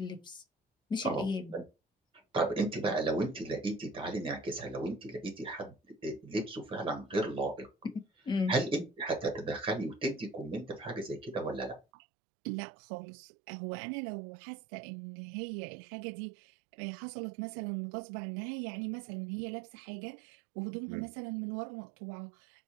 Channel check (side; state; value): left; drops out; at 11.9 s